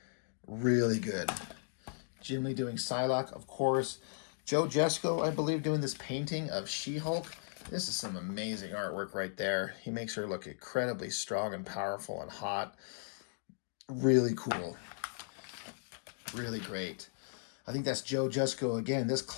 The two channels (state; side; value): silent; right; digital silence